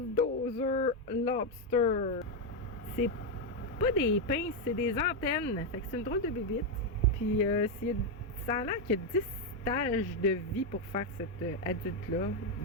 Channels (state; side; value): normal; both; correlation 0.04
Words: lobster. C'est pas des pinces, c'est des antennes. Fait que c'est une drôle de bébite. Puis ça a l'air qu'il y a 10 stages de vie pour faire cet adulte-là,